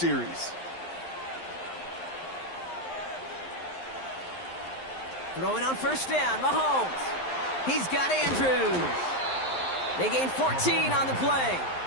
Throwing on first down, Mahomes. He's got Andrews. They gain 14 on the play.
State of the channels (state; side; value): late; right; 11 ms